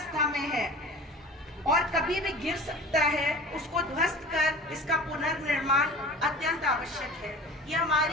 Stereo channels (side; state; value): both; normal; correlation 0.38